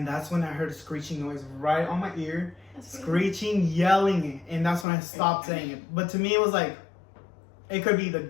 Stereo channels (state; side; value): drops out; right; at 4.9 s